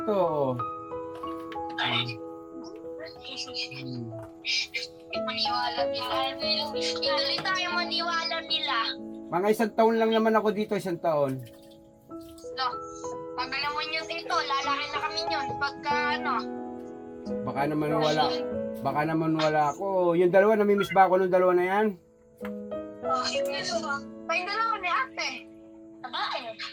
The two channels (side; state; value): both; identical; correlation 1.00